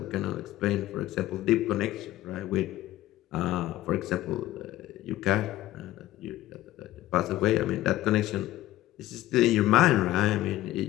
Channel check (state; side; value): quieter; right; 15.2 dB